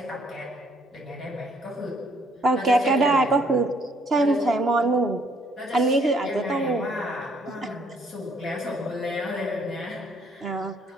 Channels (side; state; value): both; normal; correlation 0.65